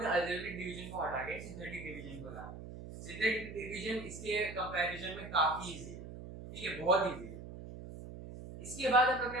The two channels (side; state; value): right; noise; hum, 11 dB below the sound